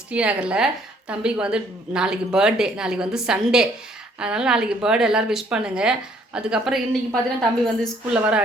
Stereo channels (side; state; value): both; normal; correlation 0.63